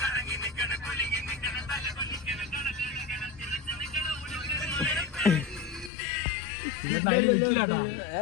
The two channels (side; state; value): right; drops out; at 5.9 s